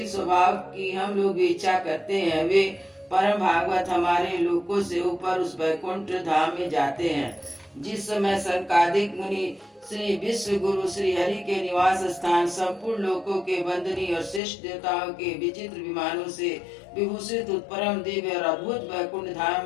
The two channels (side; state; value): right; drops out; at 14.4 s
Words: स्वभाव की हम लोग भी इच्छा करते हैं, वे परम भागवत हमारे लोकों से ऊपर उस वैकुंठ धाम में जाते हैं। जिस समय संकादिक मुनि श्री विश्व गुरु श्री हरि के निवास स्थान संपूर्ण लोकों के वंदनीय और श्रेष्ठ देवताओं के विचित्र विमानों से विभूषित परम दिव्य और अद्भुत वैकुंठ धाम